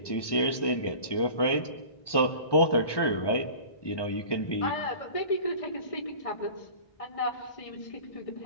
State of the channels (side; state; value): right; late; 1.2 ms